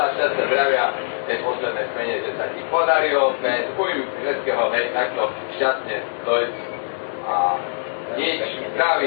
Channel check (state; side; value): silent; right; 64 dB below the other